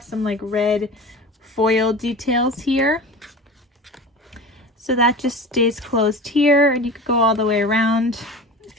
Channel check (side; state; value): both; normal; correlation 0.33